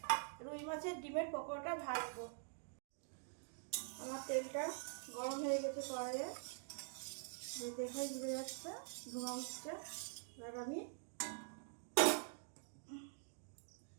রুই মাছের ডিমের পকোড়াটা ভাজবো। আমার তেলটা গরম হয়ে গেছে কড়াইয়ে, দেখাই ঘুরে যাচ্ছে, ধোঁয়া উঠছে। এবার আমি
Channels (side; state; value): left; silent; digital silence